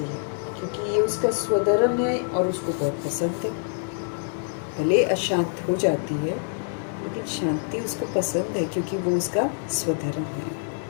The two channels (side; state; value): right; silent; digital silence